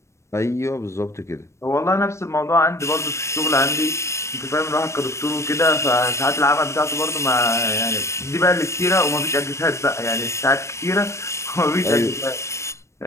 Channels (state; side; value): late; right; 0.13 ms